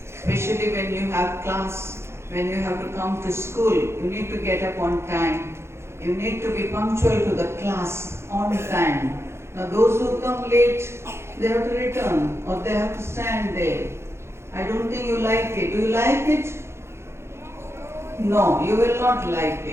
Especially when you have class, when you have to come to school, you need to get up on time. You need to be punctual to the class on time. Now those who come late, they have to return or they have to stand there. I don't think you like it. Do you like it? No, you will not like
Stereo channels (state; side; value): late; left; 0.13 ms